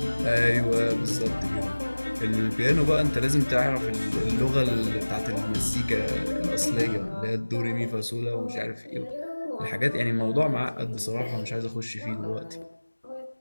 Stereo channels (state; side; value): inverted; both; correlation -1.00